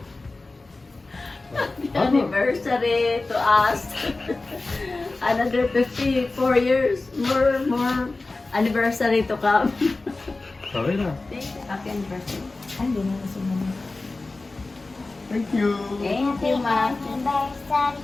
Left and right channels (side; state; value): right; quieter; 3.3 dB